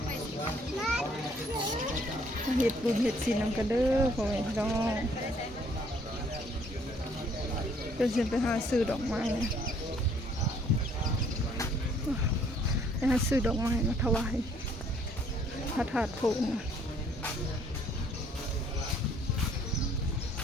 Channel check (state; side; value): normal; both; correlation 0.63